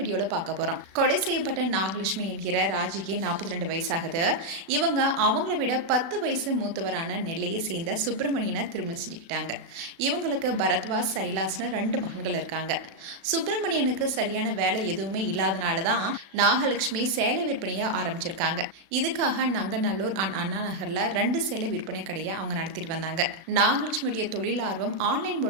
வீடியோல பார்க்க போறோம். கொலை செய்யப்பட்ட நாகலட்சுமி என்கிற ராஜிக்கு 42 வயசாகுது. இவங்க அவங்களை விட 10 வயசு மூத்தவரான நெல்லையை சேர்ந்த சுப்பிரமணியனை திருமணம் செஞ்சுக்கிட்டாங்க. இவங்களுக்கு பரத்வாஜ், சைலாஸ்னு 2 மகன்கள் இருக்காங்க. சுப்பிரமணியனுக்கு சரியான வேலை எதுவுமே இல்லாதனால தான் நாகலட்சுமி சேலை விற்பனையை ஆரம்பிச்சிருக்காங்க. இதுக்காக நங்கநல்லூர் அண்ணா நகர்ல 2 சேலை விற்பனை கடையை அவங்க நடத்திட்டு வந்தாங்க. நாகலட்சுமியுடைய தொழில் ஆர்வம் ஆன்லைன்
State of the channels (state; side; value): late; left; 36 ms